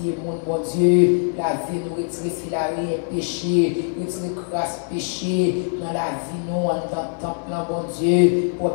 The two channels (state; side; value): silent; right; 63 dB below the other